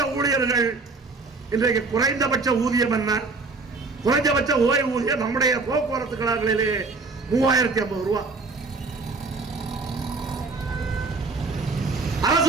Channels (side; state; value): left; quieter; 3.9 dB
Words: ஊழியர்கள் இன்றைக்கு குறைந்தபட்ச ஊதியம் என்ன? குறைந்தபட்ச ஓய்வூதியம் நம்முடைய போக்குவரத்து கழகங்களிலே 3050 ரூபாய்,